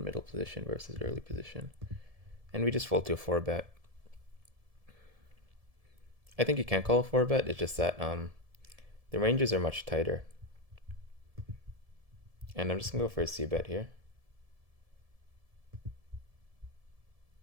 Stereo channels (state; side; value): late; left; 1.7 ms